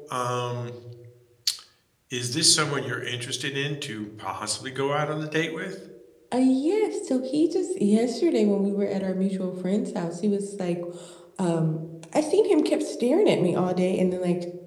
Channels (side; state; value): both; identical; correlation 1.00